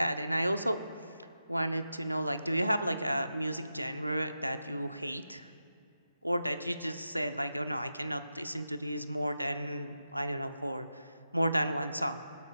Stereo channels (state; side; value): inverted; both; correlation -0.90